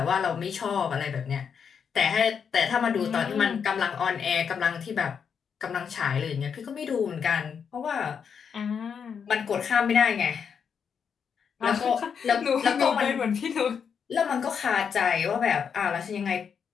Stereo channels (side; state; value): right; quieter; 6.9 dB